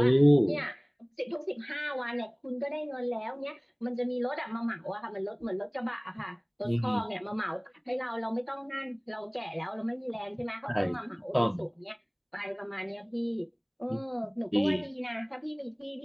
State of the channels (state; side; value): identical; both; correlation 1.00